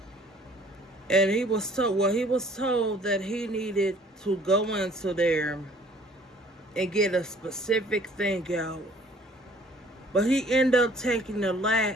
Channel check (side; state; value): both; normal; correlation 0.55